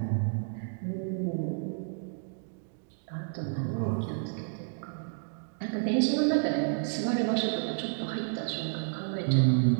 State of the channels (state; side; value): silent; left; digital silence